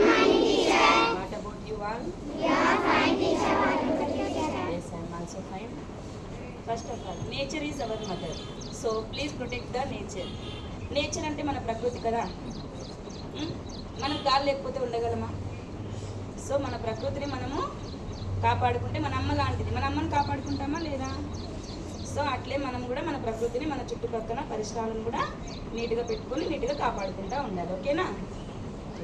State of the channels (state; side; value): identical; both; correlation 1.00